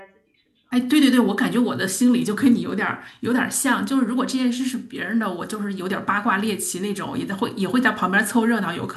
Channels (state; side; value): identical; both; correlation 1.00